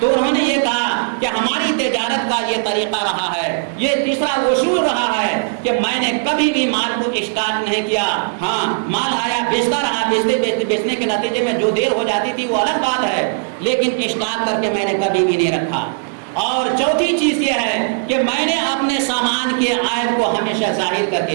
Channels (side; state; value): left; silent; 58 dB below the other